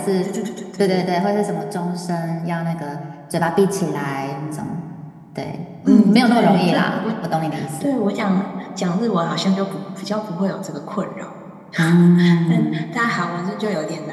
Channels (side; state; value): both; identical; correlation 1.00